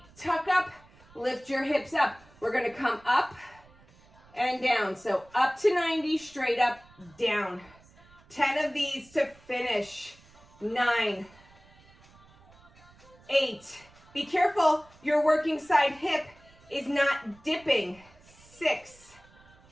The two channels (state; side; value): noise; right; rumble, 27 dB below the sound